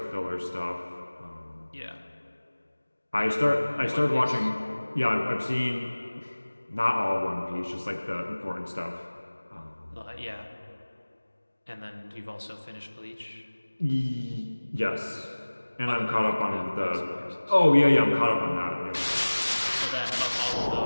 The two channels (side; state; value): both; inverted; correlation -1.00